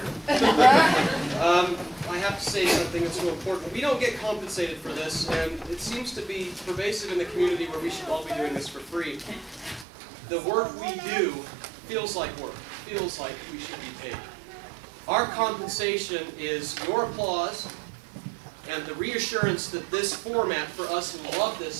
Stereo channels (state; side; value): drops out; left; at 9.9 s